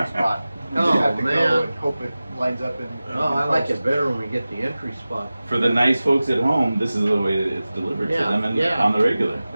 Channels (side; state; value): both; inverted; correlation -0.96